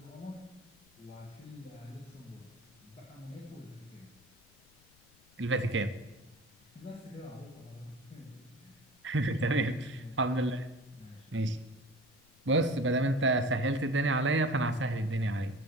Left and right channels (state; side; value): noise; left; rumble, 30 dB below the sound